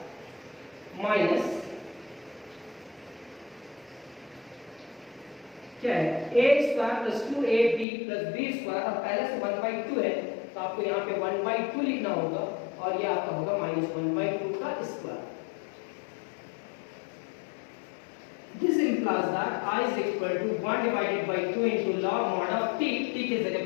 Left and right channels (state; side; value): drops out; right; at 7.9 s